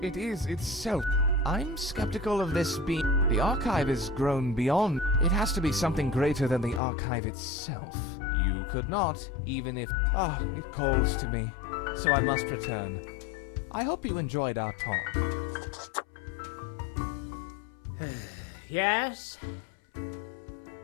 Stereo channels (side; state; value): right; drops out; at 6.8 s